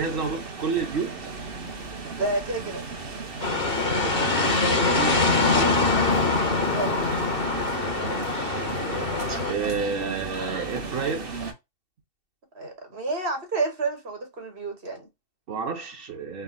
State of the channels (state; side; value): late; left; 2.7 ms